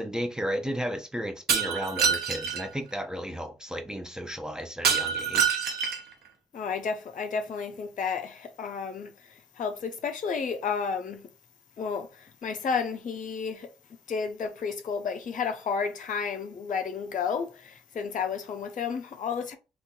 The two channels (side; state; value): both; normal; correlation 0.39